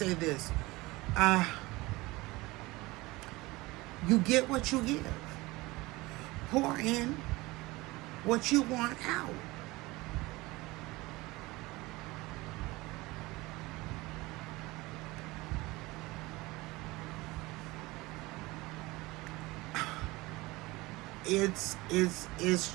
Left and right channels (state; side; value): quieter; left; 21.4 dB